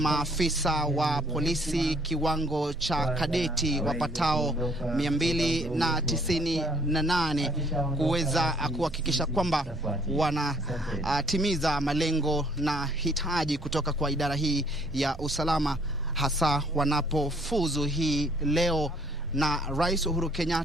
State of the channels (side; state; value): right; noise; hum, 23 dB below the sound